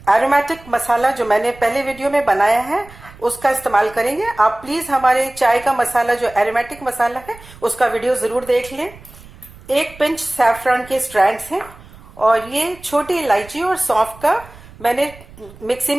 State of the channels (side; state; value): right; noise; rumble, 21 dB below the sound